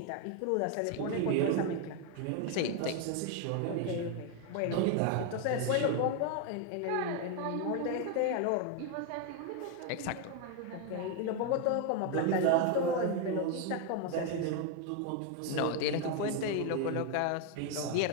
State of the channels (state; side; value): different; both; correlation 0.01